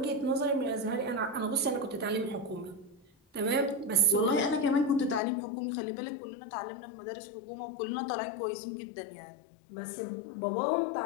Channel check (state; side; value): drops out; right; at 5.2 s